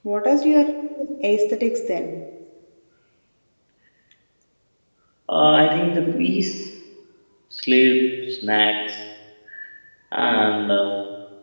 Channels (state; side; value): inverted; both; correlation -1.00